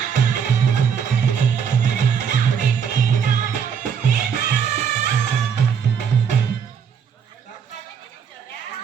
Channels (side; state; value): left; quieter; 7.2 dB